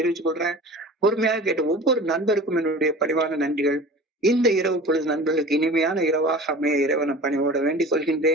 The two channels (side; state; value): both; normal; correlation 0.39